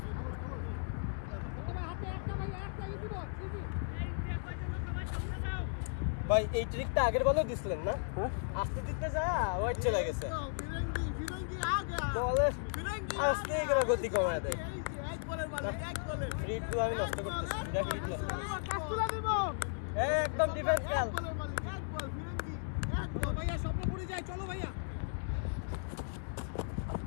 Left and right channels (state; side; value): silent; right; digital silence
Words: ভাই এই ট্রিকটা আগের বলেও দিছিলেন না আস্তে দিতে যা ওয়াইড চলে গেছে বলে আস্তে করে গতি কমায় দেয় ফ্রি টু আমি নষ্ট করতেছি দুটা ফ্রি নষ্ট করতেছি একদম ডিফেন্স খেল